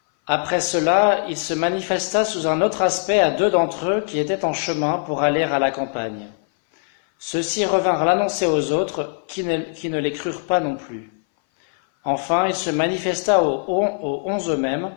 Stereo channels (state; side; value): silent; right; 60 dB below the other